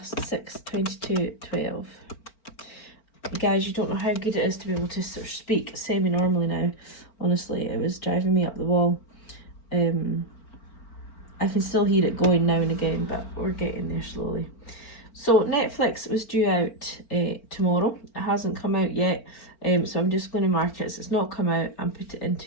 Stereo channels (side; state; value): right; late; 4.4 ms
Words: 622.12. Guys, you don't know how good it is to be able to sort of speak semi-normally now. Honestly, it was driving me up the wall. I can still hear it going now and again, but we're getting there slowly. So Netflix was due out tomorrow. It hasn't come out yet, so I'm just going to mark it so it's not come out and put it